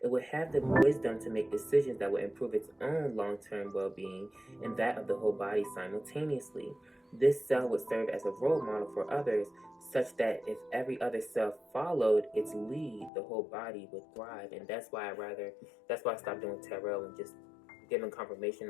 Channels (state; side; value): drops out; right; at 13.1 s